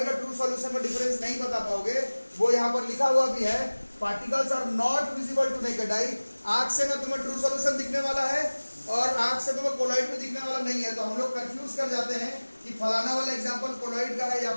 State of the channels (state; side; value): inverted; both; correlation -1.00